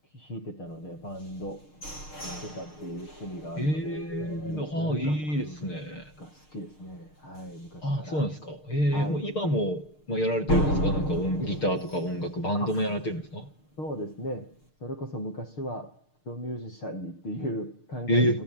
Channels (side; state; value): right; late; 6.6 ms